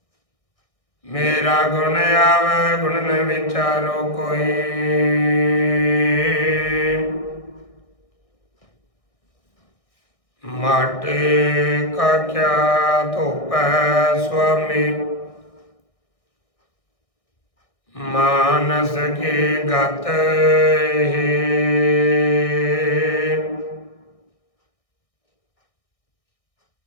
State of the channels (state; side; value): late; right; 1.6 ms